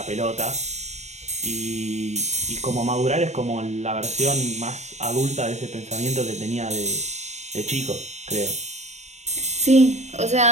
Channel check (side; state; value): left; late; 0.33 ms